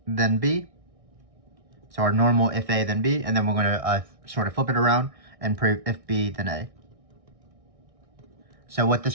then B. So our normal if A, then B. And then we're going to sort of flip it around and prove if B, then A. So what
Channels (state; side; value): late; left; 1.6 ms